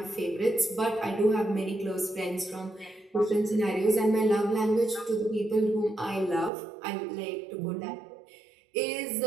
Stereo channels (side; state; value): left; drops out; at 6.5 s